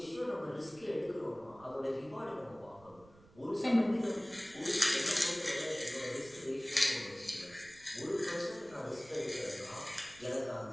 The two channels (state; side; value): noise; right; rumble, 24 dB below the sound